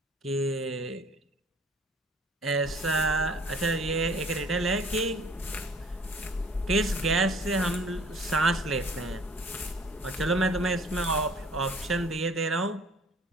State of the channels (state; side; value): normal; both; correlation 0.52